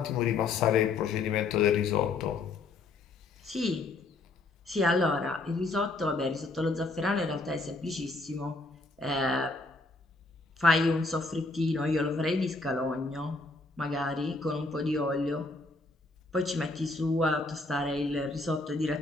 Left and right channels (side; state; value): right; quieter; 3.4 dB